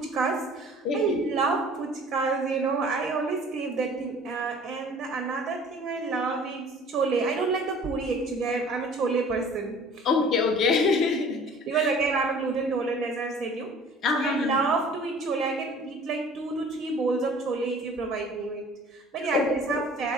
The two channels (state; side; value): normal; both; correlation 0.49